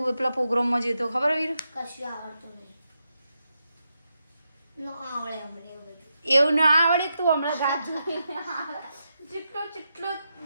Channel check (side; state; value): both; inverted; correlation -0.86